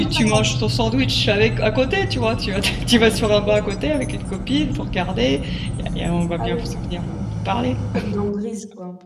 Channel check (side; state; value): both; identical; correlation 1.00